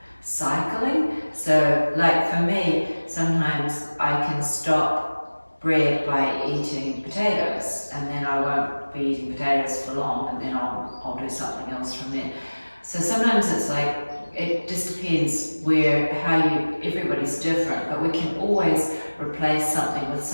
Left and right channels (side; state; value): both; inverted; correlation -1.00